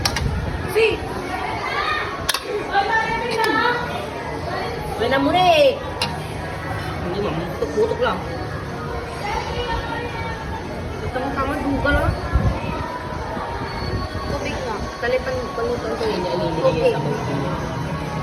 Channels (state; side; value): identical; both; correlation 1.00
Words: Si. Wala mo rin. Hindi mo, putok lang. Tama-tama, duga lang. Tubig nga. Talipan panutan ko yun. Okay.